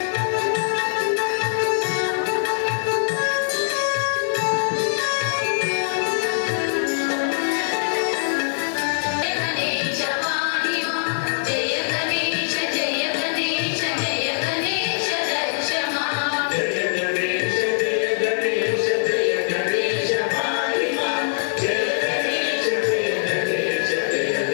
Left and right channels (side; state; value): right; silent; digital silence